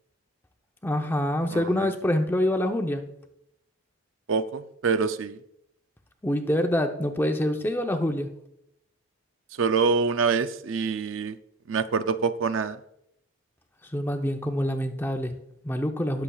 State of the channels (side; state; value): both; normal; correlation 0.46